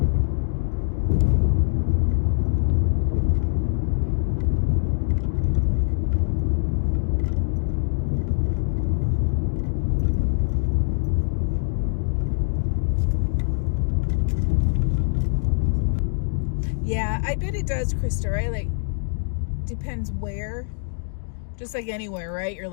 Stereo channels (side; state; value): right; silent; digital silence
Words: Yeah, I bet it does, Krista, right? Like, depends where. Just like anywhere, right? You're